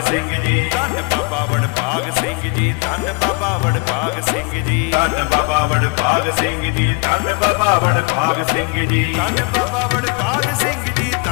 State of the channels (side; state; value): right; quieter; 31.9 dB